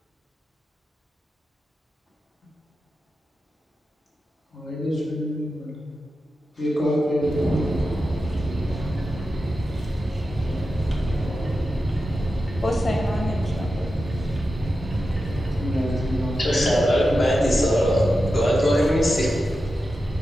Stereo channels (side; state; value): both; normal; correlation 0.91